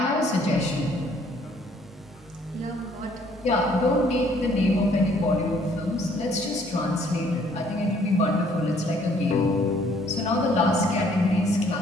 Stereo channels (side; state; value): both; normal; correlation 0.62